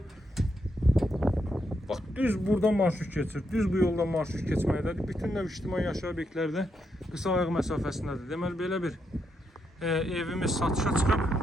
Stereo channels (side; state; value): both; normal; correlation 0.81